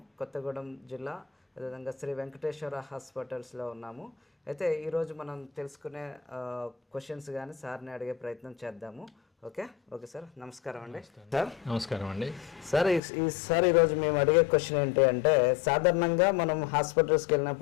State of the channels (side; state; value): right; drops out; at 13.0 s